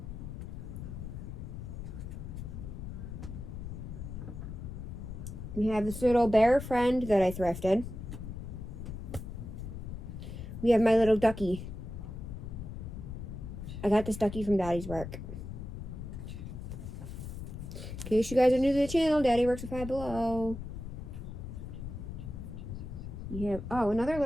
We have this little bear friend that I thrifted. We have my little ducky. I got this ducky from Daddy's work. In case you guys are new to the channel, Daddy works at Five Below. We have, oh, another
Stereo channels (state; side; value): noise; left; rumble, 8 dB below the sound